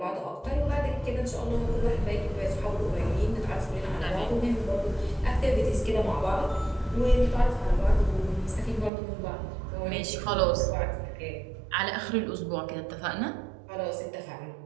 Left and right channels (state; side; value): drops out; left; at 8.9 s